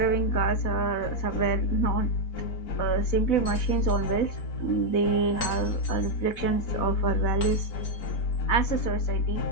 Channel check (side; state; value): right; late; 4.0 ms